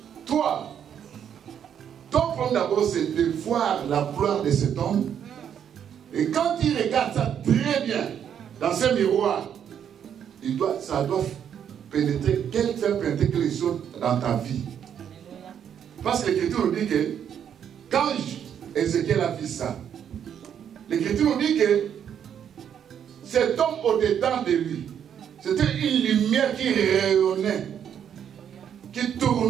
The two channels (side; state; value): left; quieter; 8.8 dB